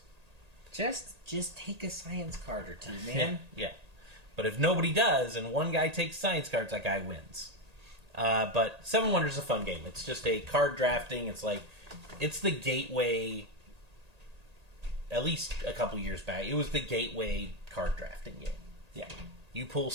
Just take a science card or two, man. Yeah. But if nobody does and one guy takes science cards, that guy wins. But Seven Wonders is a fun game. It's just a card drafting. It's the gateway. At least a couple years back, it was the gateway card drafting game. Yeah. You pull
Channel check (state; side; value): late; left; 1.8 ms